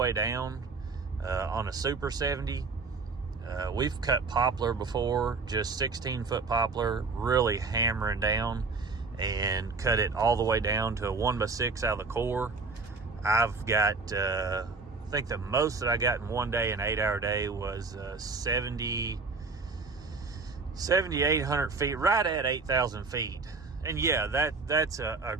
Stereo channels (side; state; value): left; quieter; 4.1 dB